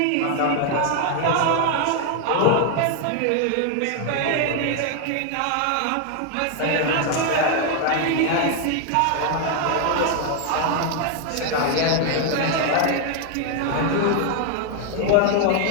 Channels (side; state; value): both; different; correlation 0.00